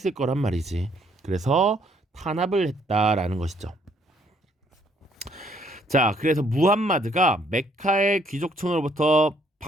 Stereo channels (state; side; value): normal; both; correlation 0.67